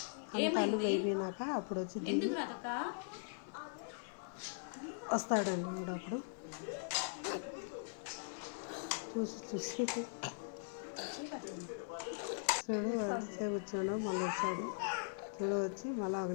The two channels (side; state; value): right; silent; 51 dB below the other